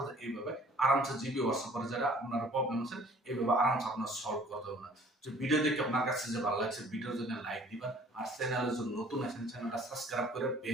এইভাবে আরামসে জিবি হোয়াটসঅ্যাপের যারা আপনার প্রবলেম আছে এইভাবে আরামসে আপনার সলভ করতে হবে না। যে ভিডিও দেখে আপনার কাছে যে ভালো লাগছে ভিডিওর জন্য লাইক দিবেন, আর চ্যানেলে যদি নতুন আছেন চ্যানেলটা সাবস্ক্রাইব করে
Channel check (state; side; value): normal; both; correlation 0.54